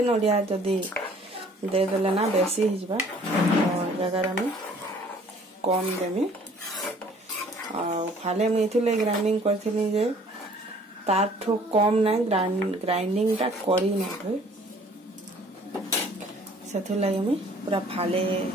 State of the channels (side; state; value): both; normal; correlation 0.55